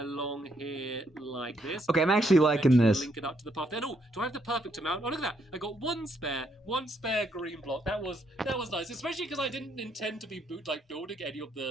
here like this. Okay, I'm actually liking this. Link it up to the path. Then do I have the perfect amount? Oh, look at that! I got one spare green block. That was nice, especially because I didn't intend to be building any of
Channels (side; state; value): both; normal; correlation 0.74